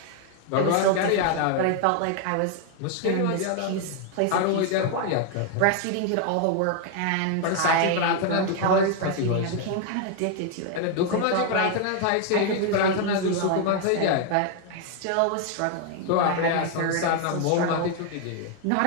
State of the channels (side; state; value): both; different; correlation 0.00